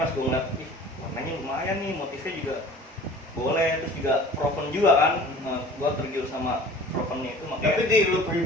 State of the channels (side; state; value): both; normal; correlation 0.44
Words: gue ngeliat, ih warnanya lumayan nih, motifnya juga boleh, terus juga Proven juga kan. Gue tergiur sama Provennya itu makanya. Tapi di lu